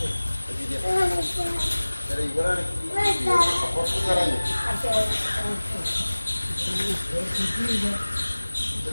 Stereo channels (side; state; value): both; inverted; correlation -1.00